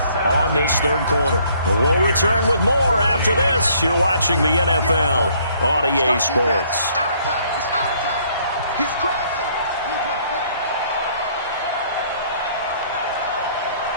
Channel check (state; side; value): inverted; both; correlation -0.63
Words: on this 3rd quarter. We'll return with more after this. You're watching the NFL on EA Sports. It's our time. He's crazy.